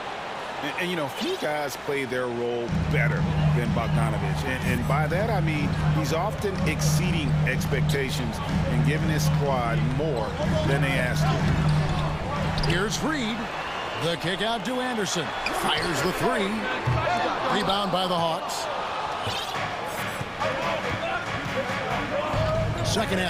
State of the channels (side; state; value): both; identical; correlation 1.00